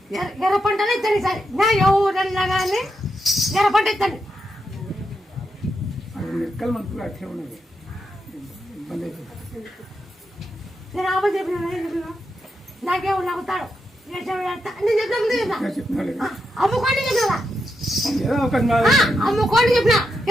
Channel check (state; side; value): normal; both; correlation 0.84